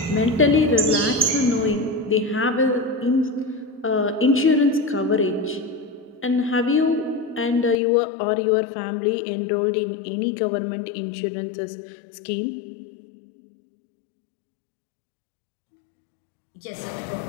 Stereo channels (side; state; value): right; drops out; at 7.8 s